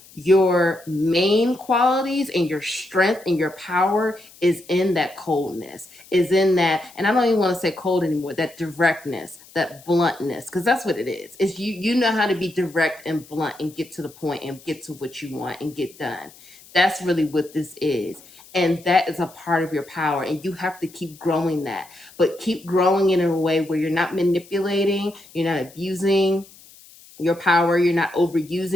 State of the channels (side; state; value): left; noise; hiss, 23 dB below the sound